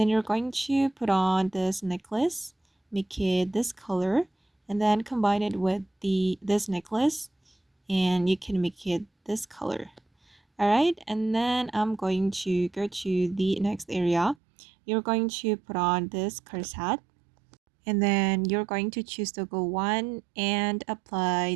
you're going to put on this necklace, make it this color, and then combine it with this necklace, and you can make it this color. All right, and then I'm going to go to the next area. You're going to put on this corset, and then you're going to choose to go 1 and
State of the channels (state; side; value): drops out; left; at 14.4 s